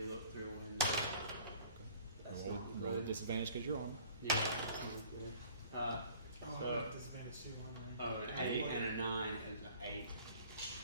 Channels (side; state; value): both; inverted; correlation -0.51